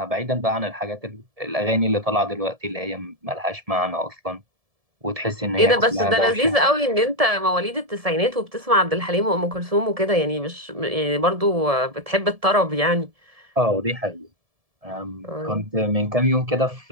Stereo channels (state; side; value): late; left; 1.7 ms